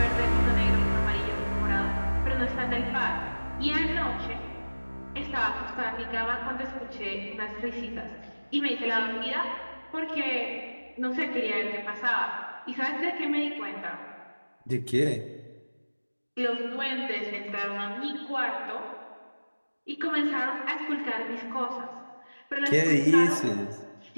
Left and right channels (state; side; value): inverted; both; correlation -1.00